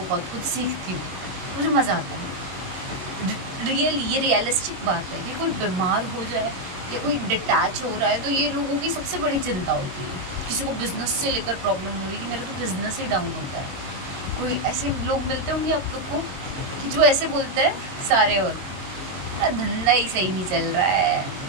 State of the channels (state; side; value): late; left; 22 ms